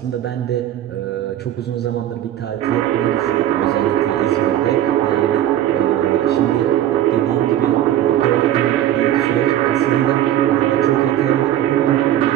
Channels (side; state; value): left; quieter; 12.2 dB